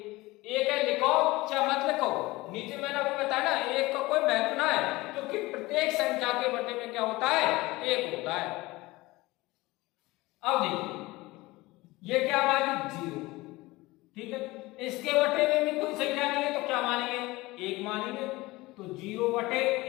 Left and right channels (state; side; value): quieter; right; 20.5 dB